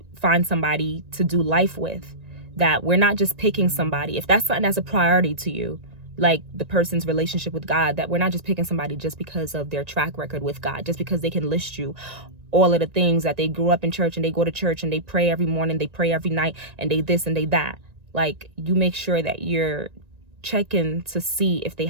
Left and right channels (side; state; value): left; late; 1.9 ms